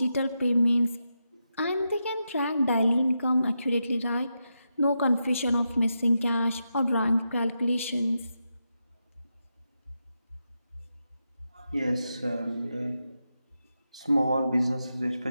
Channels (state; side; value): inverted; both; correlation -0.87